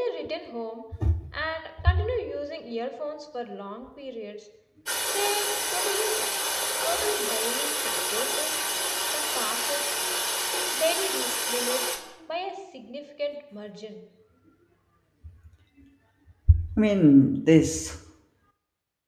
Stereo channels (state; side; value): identical; both; correlation 1.00